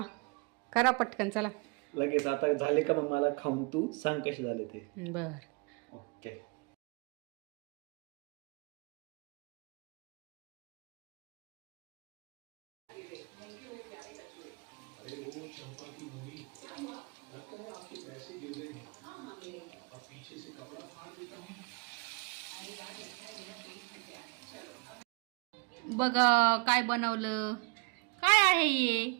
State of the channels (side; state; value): left; quieter; 31.0 dB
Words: करा पटकन चला. लगेच आता झाले का मग मला खाऊन तू सांग कसे झाले ते. बर. ओके. बघा काय बनवलं. काय आहे हे?